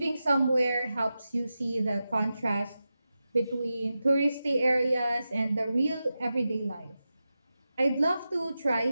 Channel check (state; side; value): inverted; both; correlation -0.92